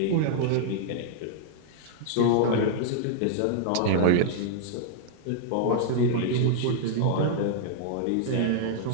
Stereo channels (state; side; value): different; both; correlation -0.01